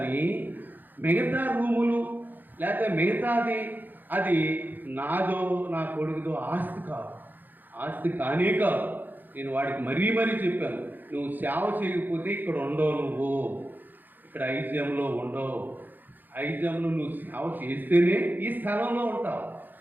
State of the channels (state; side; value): late; left; 0.088 ms